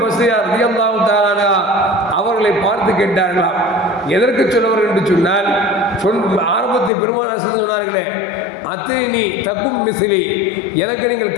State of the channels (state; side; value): drops out; right; at 6.9 s